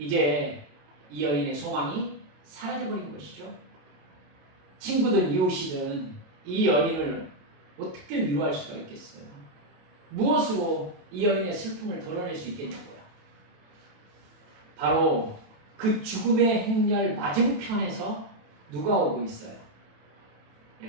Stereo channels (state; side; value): late; left; 27 ms